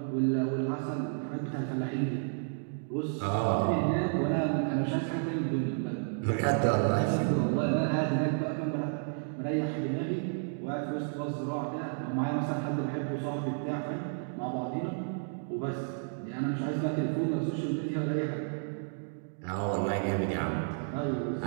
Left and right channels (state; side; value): silent; left; digital silence